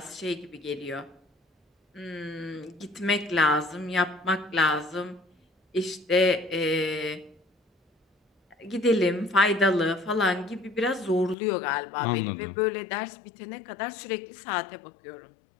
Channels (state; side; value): drops out; right; at 11.4 s